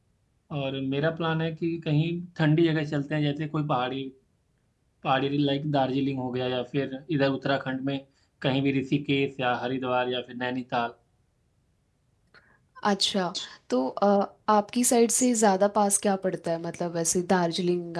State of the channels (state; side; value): identical; both; correlation 1.00